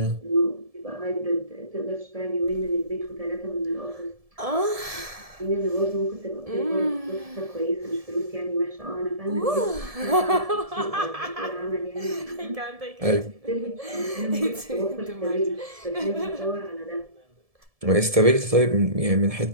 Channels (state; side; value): late; left; 1.7 ms